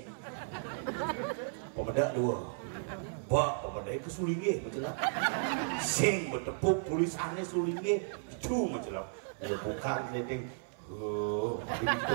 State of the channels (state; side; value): silent; left; 55 dB below the other